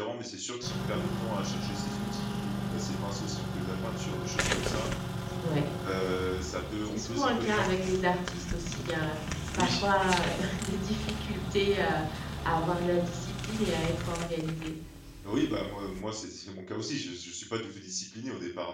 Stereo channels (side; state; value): both; identical; correlation 1.00